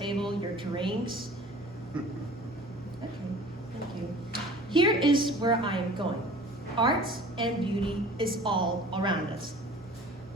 your drinks? Okay, thank you. Here is where I am going. Art and beauty is all around us.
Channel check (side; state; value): both; normal; correlation 0.45